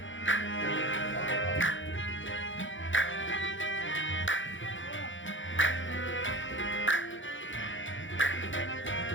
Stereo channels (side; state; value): right; late; 0.56 ms